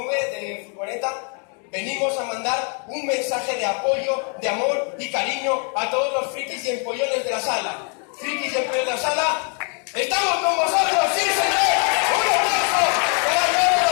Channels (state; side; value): quieter; right; 39.7 dB